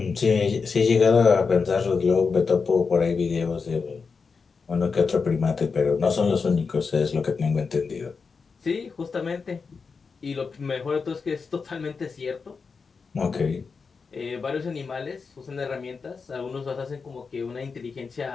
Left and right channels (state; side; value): quieter; right; 5.1 dB